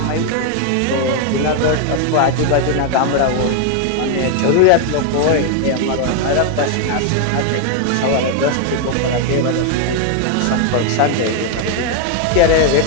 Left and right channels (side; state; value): both; different; correlation 0.01